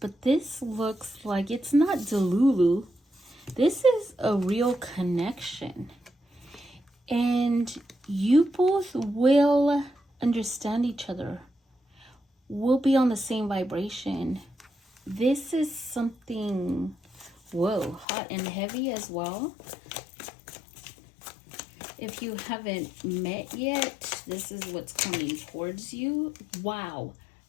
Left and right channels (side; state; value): right; drops out; at 18.1 s